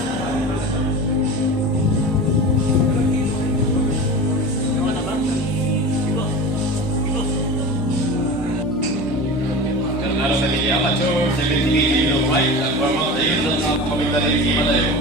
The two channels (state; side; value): normal; both; correlation 0.31